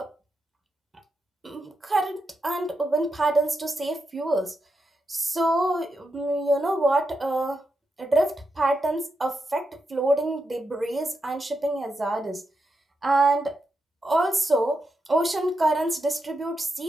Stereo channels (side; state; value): both; normal; correlation 0.85